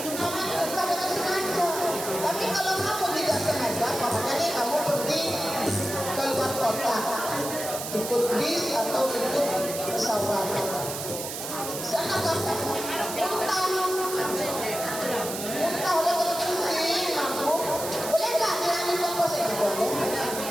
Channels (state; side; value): noise; right; hiss, 7 dB below the sound